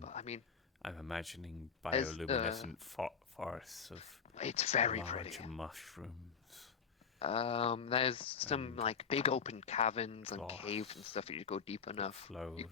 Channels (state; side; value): quieter; right; 6.4 dB